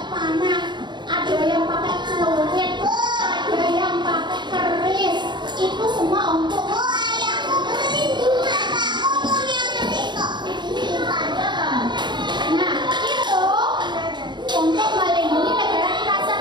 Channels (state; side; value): late; left; 0.22 ms